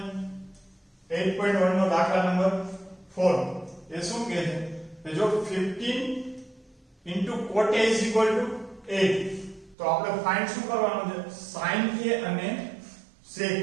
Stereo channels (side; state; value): left; drops out; at 9.8 s